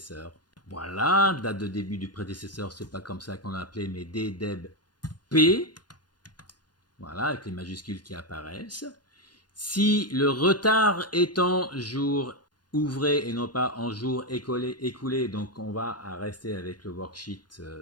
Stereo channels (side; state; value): right; late; 0.70 ms